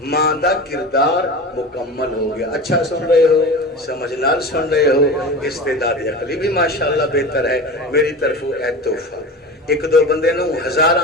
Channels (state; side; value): normal; both; correlation 0.31